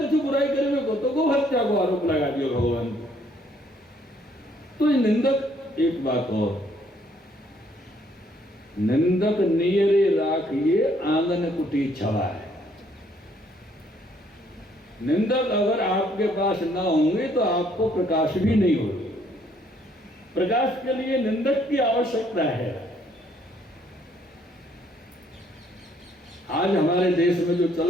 बुराई करने को, तो गो हत्या को आरोप लगा दिया भगवान। तो ये निंदक, एक बात और, निंदक नियरे राखिए आंगन कुटी छवा है। निंदक अगर आपके पास ना होंगे तो आपको प्रकाश भी नहीं होगा। प्रकाश के लिए निंदक की आवश्यकता है। आज हमारे देश में जो चल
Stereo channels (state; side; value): normal; both; correlation 0.66